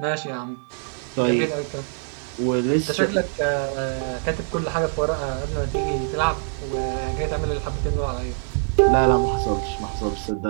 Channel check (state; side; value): silent; left; 63 dB below the other